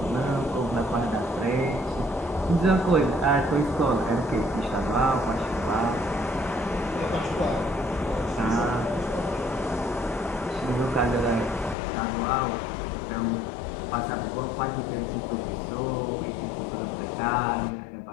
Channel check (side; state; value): right; drops out; at 11.8 s